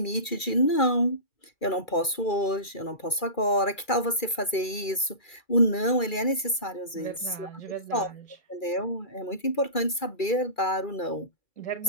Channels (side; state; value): right; late; 2.3 ms